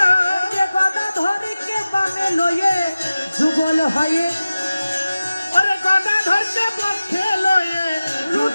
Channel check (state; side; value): inverted; both; correlation -0.96